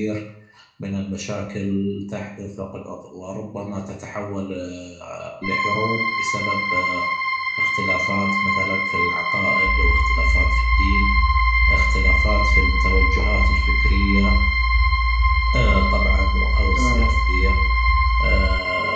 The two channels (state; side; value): identical; both; correlation 1.00